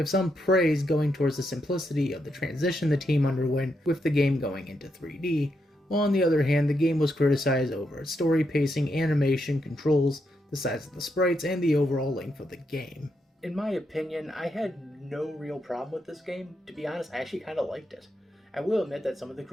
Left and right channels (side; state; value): both; normal; correlation 0.81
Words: some praise going towards the simplicity of the transition the team underwent with the game going into 3D, while on the other hand the game was criticized over its story pacing, animation, controls, the size of the sprites, and the overall length of the game. In my opinion, I had no real problem with this game. To be honest, I actually kind of liked it. I will admit that some of the